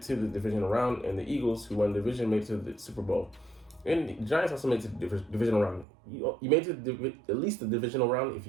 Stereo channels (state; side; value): drops out; left; at 5.9 s